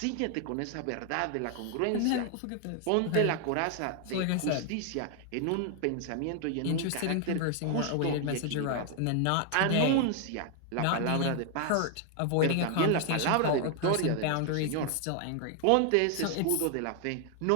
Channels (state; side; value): different; both; correlation 0.00